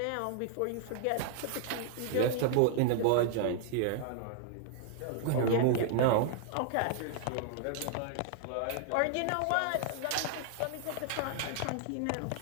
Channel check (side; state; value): both; different; correlation -0.01